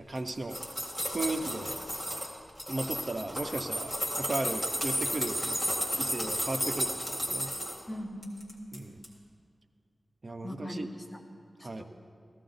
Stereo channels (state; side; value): normal; both; correlation 0.96